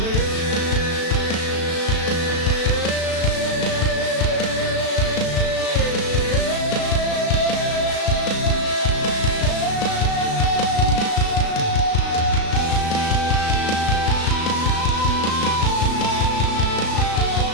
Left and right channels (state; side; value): late; right; 36 ms